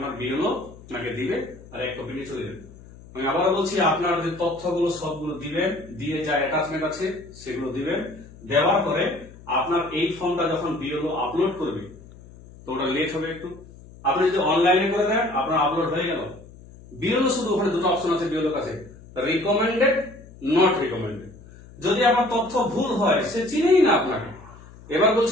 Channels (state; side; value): noise; left; hum, 20 dB below the sound